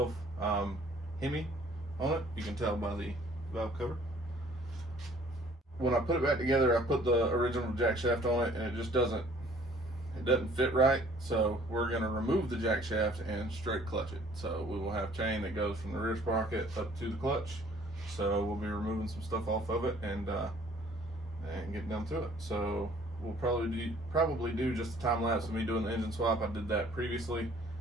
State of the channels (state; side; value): normal; both; correlation 0.56